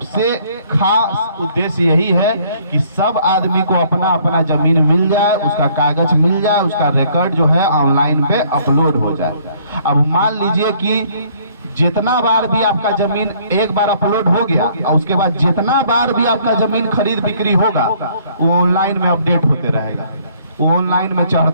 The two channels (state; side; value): inverted; both; correlation -0.61